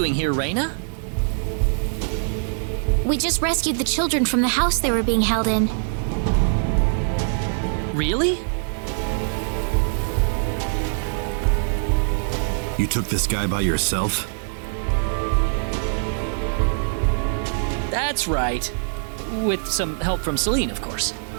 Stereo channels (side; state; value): left; silent; digital silence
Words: here, Rena? We just rescued the children from the house they were being held in. Really? You took this guy by yourself? That's right. With some help from Celine, of course.